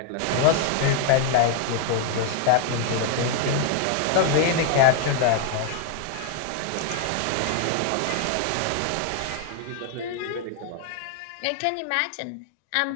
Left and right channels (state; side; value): different; both; correlation 0.00